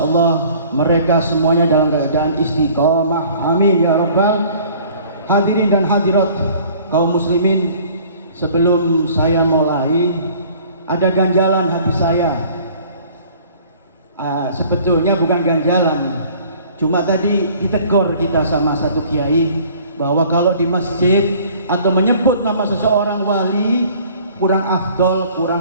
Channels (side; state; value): both; inverted; correlation -0.52